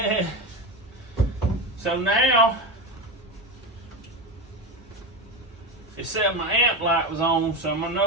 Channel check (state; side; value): normal; both; correlation 0.19